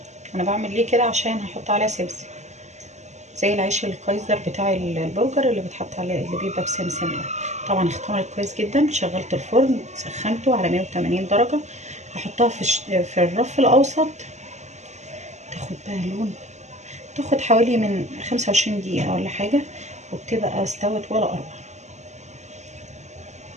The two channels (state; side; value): late; left; 0.33 ms